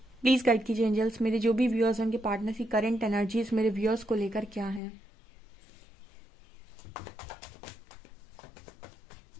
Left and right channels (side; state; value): right; drops out; at 4.8 s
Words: प्लीज गाइड कीजिए एंजल्स, मेरे जो भी व्यूअर्स हैं उनके पार्टनर की करंट एनर्जीज मेरे व्यूअर्स को लेकर क्या है।